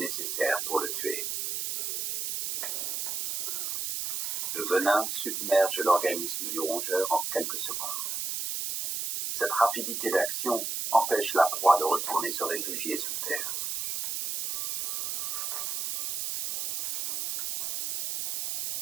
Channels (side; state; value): right; noise; hiss, 3 dB below the sound